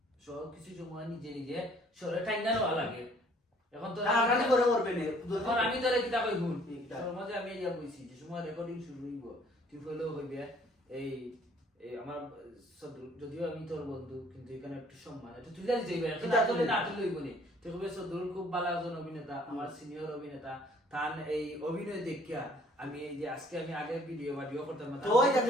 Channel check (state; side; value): normal; both; correlation 0.58